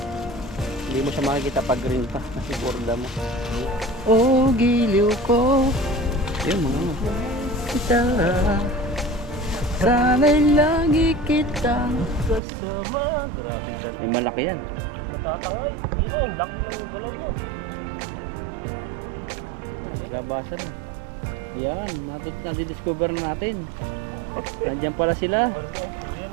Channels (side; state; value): left; drops out; at 12.4 s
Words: Hindi mo siya makikita pag green pa. Kasi borda mo. Oh, giliw ko. Ayun mga. Kita. Sana'y lagi kita kasama. Grabe ka. May malaki yan. Matatangay. Dito, ang laki ng galaw mo. Labasan na. Yan, nadidiscover na natin. Nandiyan pala sila. Ayan